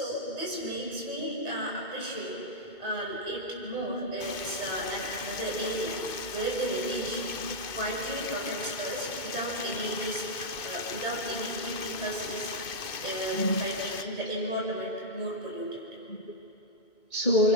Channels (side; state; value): right; late; 2.2 ms